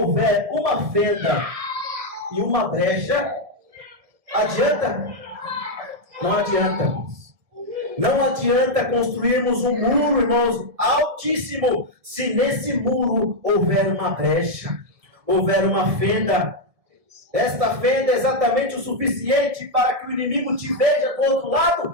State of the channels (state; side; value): late; left; 1.7 ms